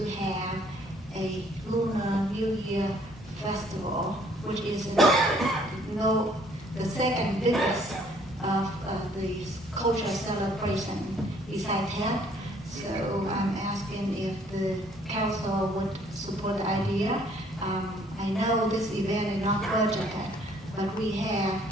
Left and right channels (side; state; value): both; normal; correlation 0.61